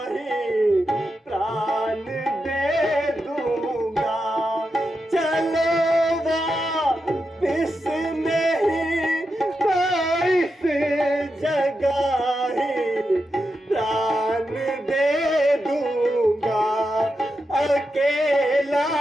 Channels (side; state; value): both; normal; correlation 0.87